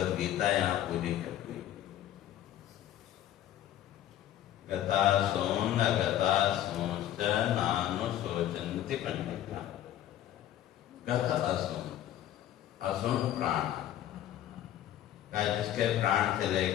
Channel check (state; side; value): quieter; right; 12.1 dB